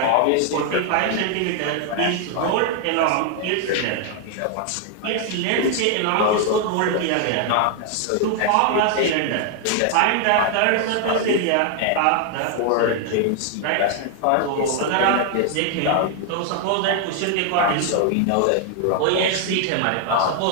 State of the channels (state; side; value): different; both; correlation 0.00